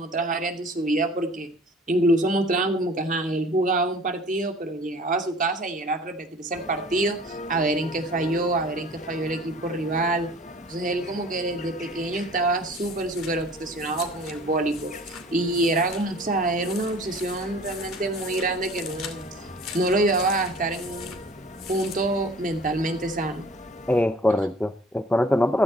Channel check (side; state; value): both; normal; correlation 0.48